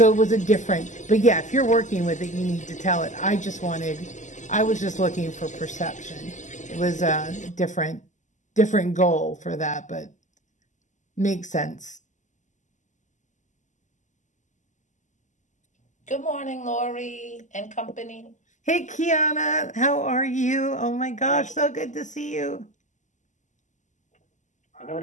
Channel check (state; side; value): late; right; 0.35 ms